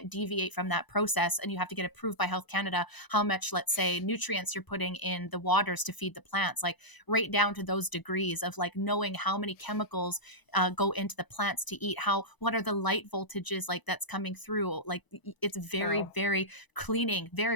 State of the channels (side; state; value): right; late; 1.0 ms